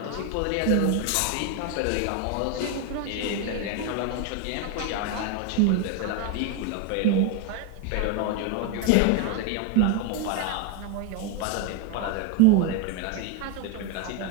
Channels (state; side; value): different; both; correlation 0.02